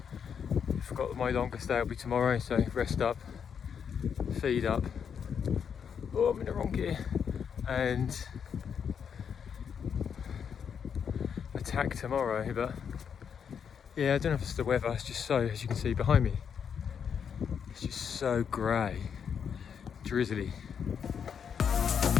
I forgot that my longest day will be tomorrow, so rest up, feed up. Oh, I'm in the wrong gear. And attack tomorrow, but yeah, I don't know if it's the weather. It's just so, as you can see behind me, it's just so grey, drizzly.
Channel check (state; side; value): quieter; right; 7.3 dB